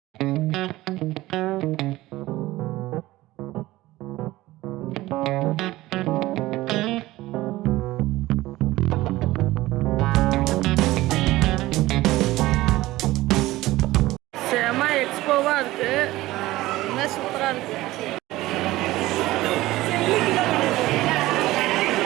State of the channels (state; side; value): quieter; left; 17.6 dB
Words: செம எக்ஸ்போவாக இருக்கு. இன்னும் சூப்பராக இருக்கு.